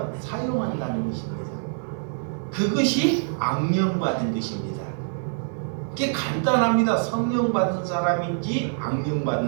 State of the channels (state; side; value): silent; left; 62 dB below the other